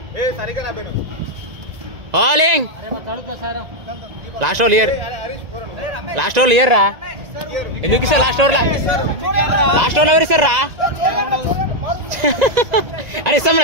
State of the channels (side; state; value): left; late; 1.9 ms